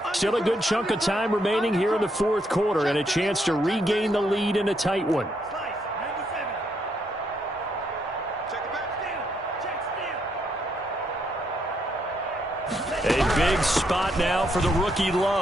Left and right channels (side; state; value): both; normal; correlation 0.76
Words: Still a good chunk of time remaining here in the fourth quarter and a chance to regain the lead in a tight one. A big spot now for the rookie